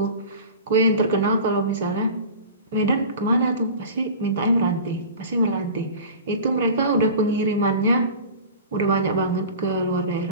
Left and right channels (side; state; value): both; inverted; correlation -0.37